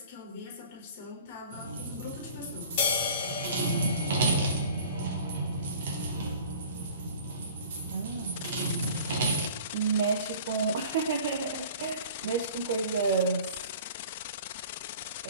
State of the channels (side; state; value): both; inverted; correlation -0.45